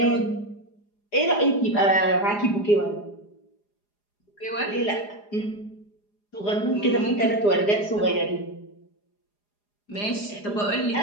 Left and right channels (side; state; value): right; late; 4.9 ms